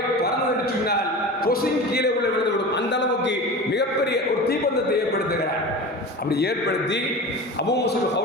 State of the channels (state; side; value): normal; both; correlation 0.32